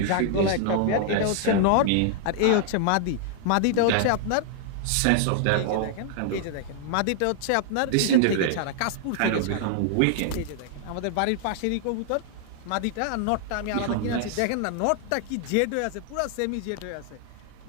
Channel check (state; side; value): different; both; correlation 0.00